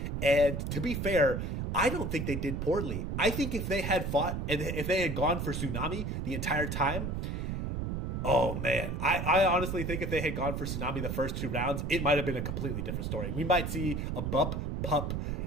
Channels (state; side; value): noise; right; rumble, 2 dB below the sound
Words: And to be fair, I don't think they did poorly. I think if they had fought and if they had gone for Tsunami the entire time, oh man, I honestly think if they had gone for Tsunami the first 2 rounds, it might have been a completely different story. We might see a Bup Pup.